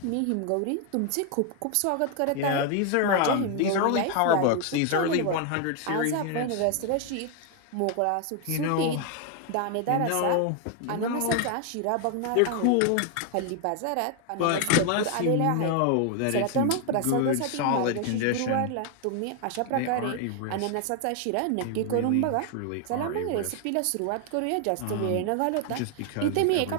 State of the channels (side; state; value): both; different; correlation 0.00